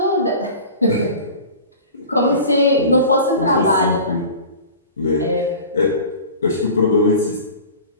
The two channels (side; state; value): both; inverted; correlation -0.38